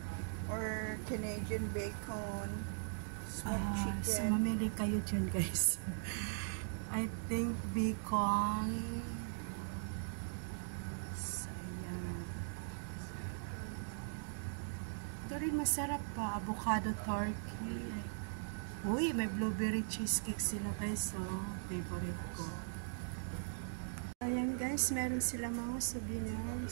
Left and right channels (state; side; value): silent; left; digital silence